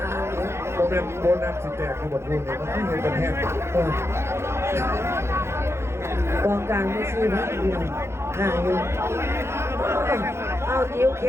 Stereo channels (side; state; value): left; late; 0.13 ms